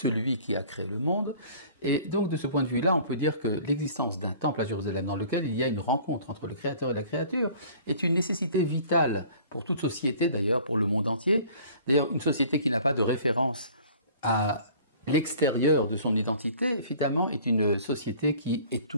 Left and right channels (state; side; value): inverted; both; correlation -0.49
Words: qui a créé le monde. Et donc de ce point de vue-là, on peut dire que l'existence d'un temple à Jérusalem dans lequel il y a une rencontre entre le Créateur et la créature est une nécessité vitale pour toute société, d'ailleurs pour le monde entier. D'ailleurs, une société qui n'a pas de référence à l'extérieur de son identité, finalement, est une société qui